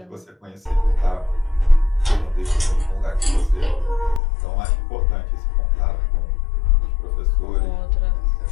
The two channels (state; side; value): drops out; right; at 4.2 s